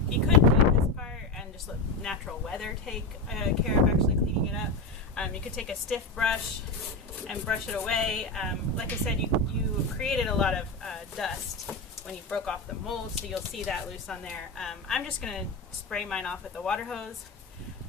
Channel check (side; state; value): right; quieter; 3.1 dB